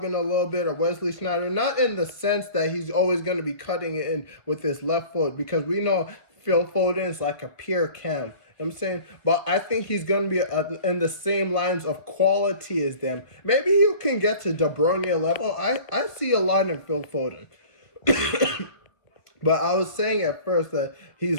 a little bit, or Wesley Sneijder, not in the sense that he's always gonna be cutting it in with his left foot, because we know Phil Foden is like a pure cam. You know what I'm saying? But I think he's going to be in the same lines of quality as them. Maybe you can get to De Bruyne level. I see a lot in Phil Foden. But I was saying at first that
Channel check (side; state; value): right; late; 1.3 ms